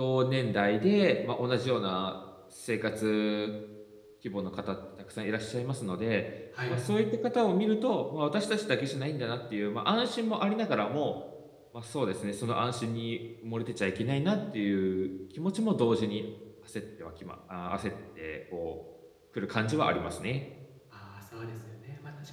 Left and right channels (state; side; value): identical; both; correlation 1.00